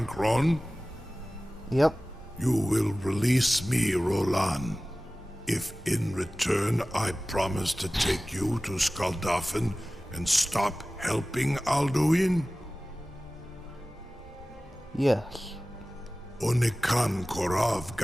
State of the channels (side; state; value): both; normal; correlation 0.97